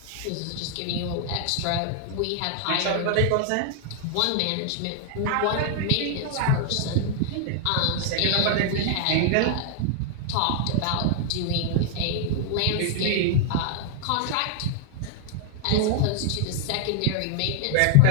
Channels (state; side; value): different; both; correlation 0.00